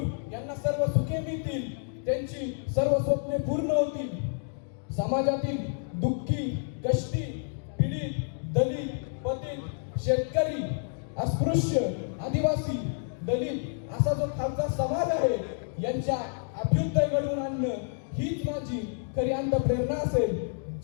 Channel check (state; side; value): silent; right; digital silence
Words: यांना सर्व सुखे मिळतील, त्यांची सर्व स्वप्ने पूर्ण होतील। समाजातील दुःखी, कष्टी, पीडित, दलित, पतित, शेतकरी, अस्पृश्य, आदिवासी, दलित असा जो खालचा समाज आहे, यांच्या अभ्युदय घडवून आणणं हीच माझी खरी अंतःप्रेरणा असेल।